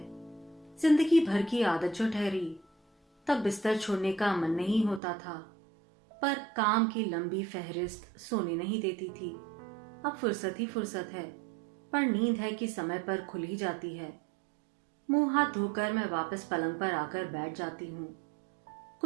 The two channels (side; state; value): left; drops out; at 5.0 s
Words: जिंदगी भर की आदत जो ठहरी, तब बिस्तर छोड़ने का मन नहीं होता था, पर काम की लंबी फहरिस्त सोने नहीं देती थी। अब फुर्सत ही फुर्सत है, पर नींद है कि समय पर खुल ही जाती है। मुंह हाथ धोकर मैं वापस पलंग पर आकर बैठ जाती हूँ।